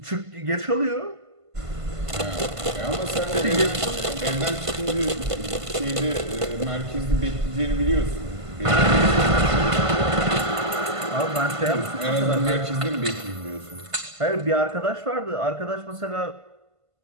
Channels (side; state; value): left; late; 1.5 ms